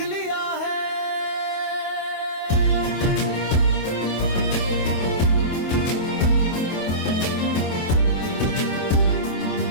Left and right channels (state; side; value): late; right; 25 ms